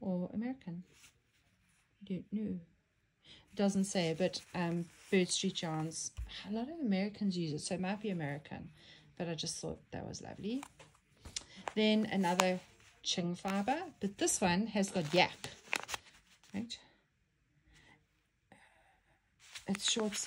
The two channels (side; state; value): both; identical; correlation 1.00